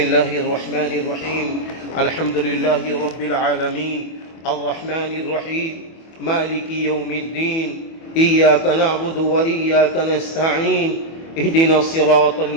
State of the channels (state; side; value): late; right; 24 ms